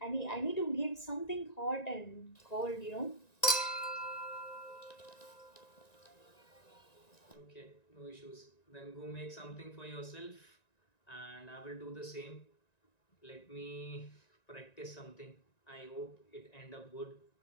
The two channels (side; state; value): right; late; 1.9 ms